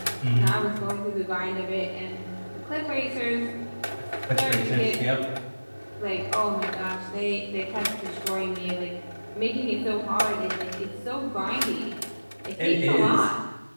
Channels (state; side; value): inverted; both; correlation -1.00